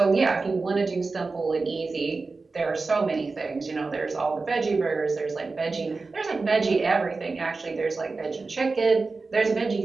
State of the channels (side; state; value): left; quieter; 3.9 dB